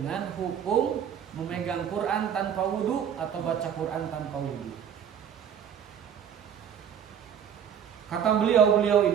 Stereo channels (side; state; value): left; quieter; 8.4 dB